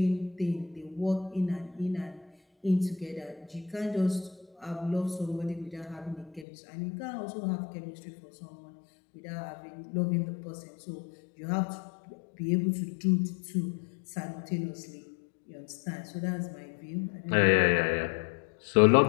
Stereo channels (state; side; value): drops out; right; at 6.5 s